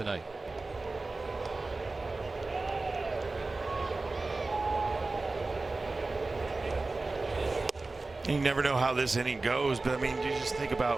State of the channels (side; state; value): left; quieter; 3.4 dB